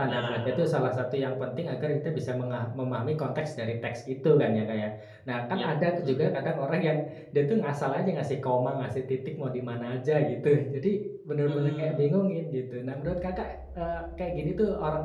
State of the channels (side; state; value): both; identical; correlation 1.00